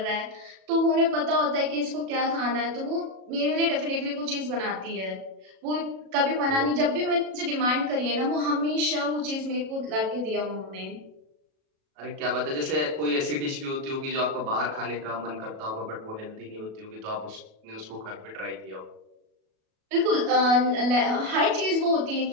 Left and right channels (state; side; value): late; left; 37 ms